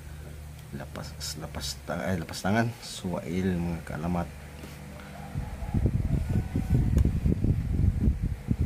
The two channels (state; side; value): identical; both; correlation 1.00